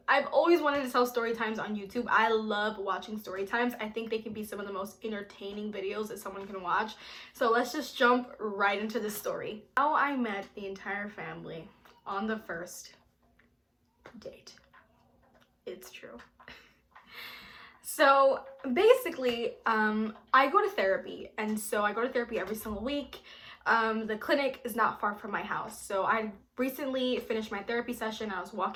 I've always wanted to tell story times on YouTube. I love watching story times. I think they can be some of the most entertaining videos that someone can watch. So let's just jump right into the story. How I met the entire family on the first date. It's true. So basically, I go to therapy, and so I go to therapy every single week. The clinic is not far from my house, so I recently finished my therapy session. I was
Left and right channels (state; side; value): identical; both; correlation 1.00